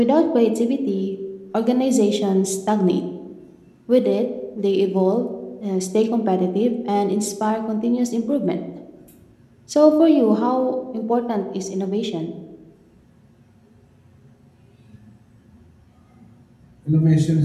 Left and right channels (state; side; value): identical; both; correlation 1.00